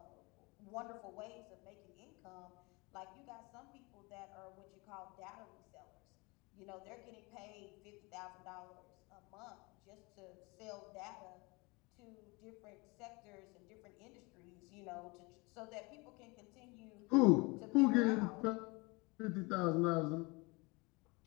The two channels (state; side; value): quieter; right; 26.6 dB